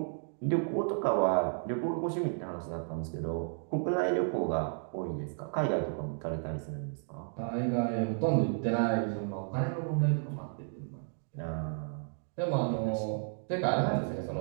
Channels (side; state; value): left; silent; digital silence